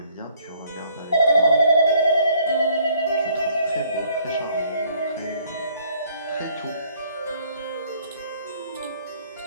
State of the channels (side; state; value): both; inverted; correlation -0.62